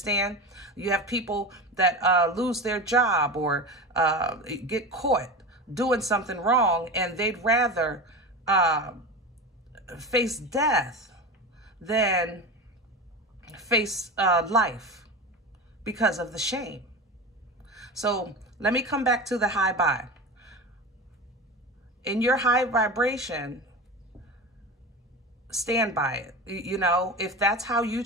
You have people that lose their job or get caught doing something wrong, and they'd rather face death than face life because of the shame. So let me come back to the high vibe. In your high vibration, stand by it. You know, if that's how you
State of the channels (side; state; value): both; normal; correlation 0.27